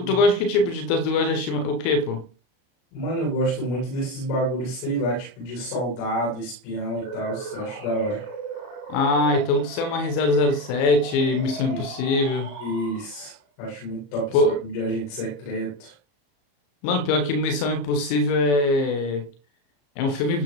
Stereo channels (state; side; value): late; right; 34 ms